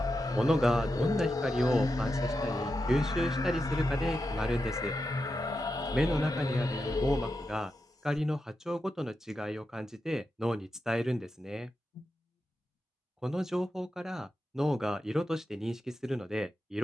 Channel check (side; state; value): both; normal; correlation 0.88